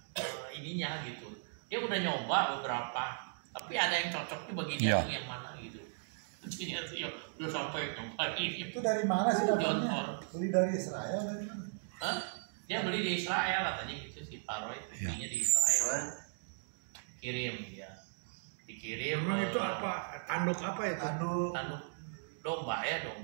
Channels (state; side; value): silent; left; digital silence